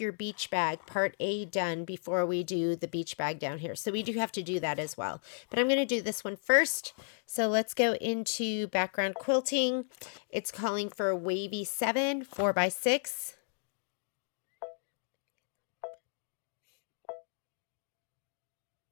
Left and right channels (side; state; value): right; silent; digital silence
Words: beach bag, part A, done before we do the beach bag down here. So we do have to do that as well. But I'm going to do this one first. So let's go into background quilting. It's calling for wavy 7, 4x6.